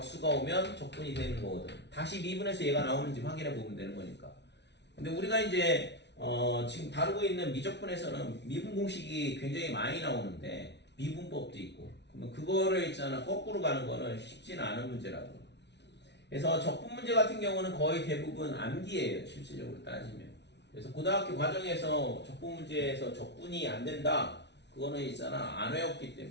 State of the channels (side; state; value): right; late; 0.50 ms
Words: 오면 적분이 되는 거거든. 다시 미분에서 얘가 나오는지 확인해 보면 되는 거니까. 근데 우리가 이제 지금 다루고 있는 미적분에서는 미분 공식이 굉장히 많이 나오는데 미분법도 있고, 그러면 그거를 있잖아 거꾸로 가는 거는 쉽지는 않은 문제라고. 그래서 적분 문제 같은 경우는 거의 대부분 암기예요 실질적으로 따지면. 그래서 고등학교 과정에서 적분 문제에서 적분이 안 된다, 그거는 있잖아 안 외웠기